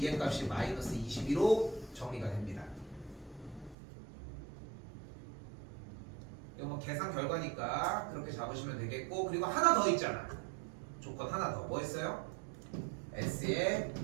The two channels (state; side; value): drops out; left; at 3.8 s